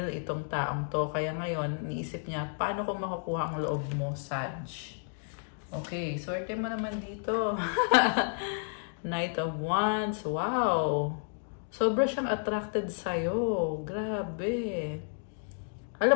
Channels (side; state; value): right; silent; digital silence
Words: itong taong to. Kaya ngayon, niisip niya, paano ko makukuha ang loob mo, Sag? Okay, swerte mo naman dito. Knight of Wands. Wow! Sobra siyang attracted sa'yo. Grabe.